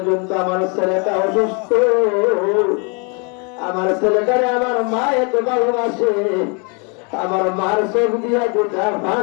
আমার ছেলেটা অসুস্থ আমার ছেলেটারে আমার মা এত ভালোবাসে আমার মার চোখ দিয়া গোটা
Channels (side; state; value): right; quieter; 34.6 dB